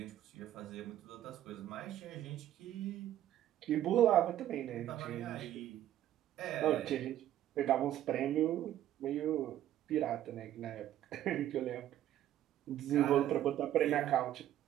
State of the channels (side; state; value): left; quieter; 12.2 dB